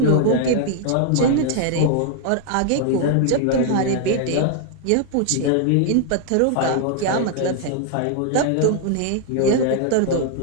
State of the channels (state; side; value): different; both; correlation 0.00